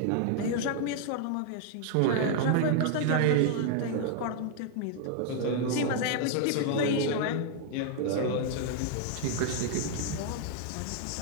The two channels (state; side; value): different; both; correlation 0.00